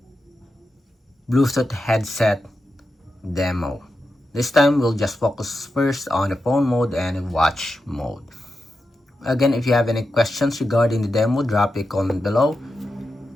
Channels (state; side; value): normal; both; correlation 0.89